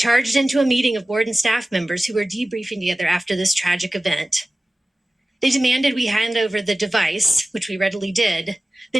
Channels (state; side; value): normal; both; correlation 0.97